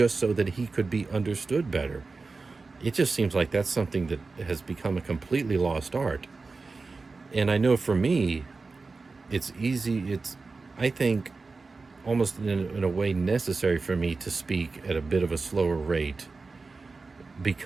so that he could be understood better. It just seems like that's something that has become a completely lost art. And I know for me, it's I think, almost in a way necessary for me to speak at a bit of a slower rate,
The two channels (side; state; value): left; quieter; 4.0 dB